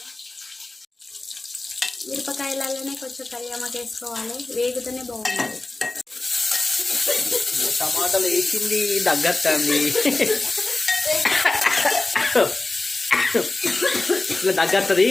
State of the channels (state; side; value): quieter; right; 3.1 dB